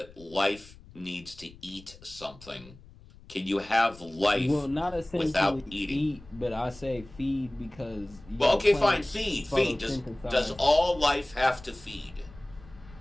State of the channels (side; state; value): left; noise; rumble, 21 dB below the sound